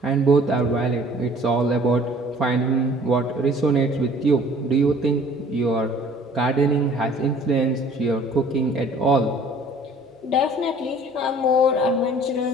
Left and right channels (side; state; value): both; normal; correlation 0.52